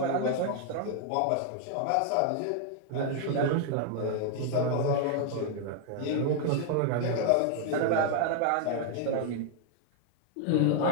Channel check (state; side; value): different; both; correlation 0.00